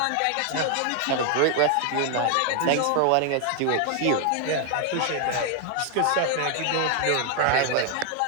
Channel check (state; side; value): different; both; correlation 0.00